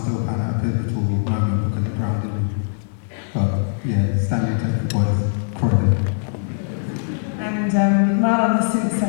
pan at a pivotal moment because it grounded me. But yeah, Stanley Tech boys, Croydon. And Marlon has since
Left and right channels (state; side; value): silent; right; 65 dB below the other